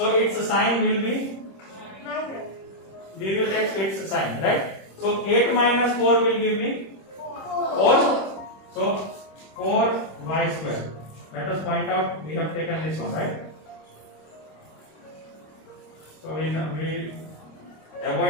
its sign will be. We will take its sign, right? So 8 minus 4 will give me 4. So 4y square. Let us point out we have taken this one, right? So we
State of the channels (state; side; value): late; right; 26 ms